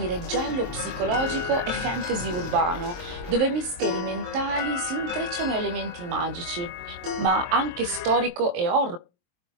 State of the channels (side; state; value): left; late; 23 ms